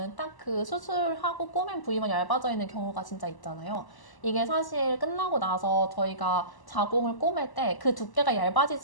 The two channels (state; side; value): late; right; 1.0 ms